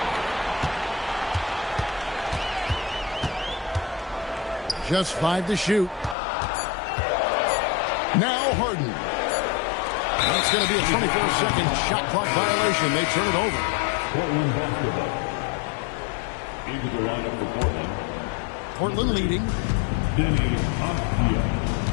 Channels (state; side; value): drops out; right; at 6.2 s